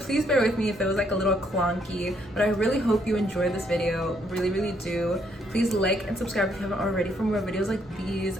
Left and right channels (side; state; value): both; normal; correlation 0.71